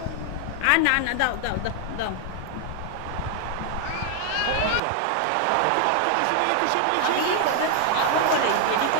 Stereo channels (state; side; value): different; both; correlation 0.00